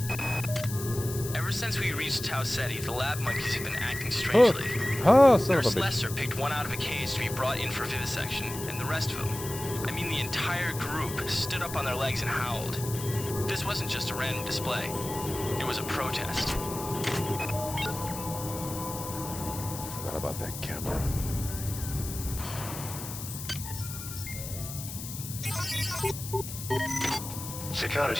Ever since we reached Tau Ceti, the lab monkeys have been acting strangely. Oh, son of a Nurse bitch. Lester picked one out of a cage to be brought in for vivisection, and the rest of them, I mean the entire group, stood up on their legs and howled. This wasn't just a random display. It was a protest. Forgot about that camera.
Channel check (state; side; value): noise; left; hiss, 9 dB below the sound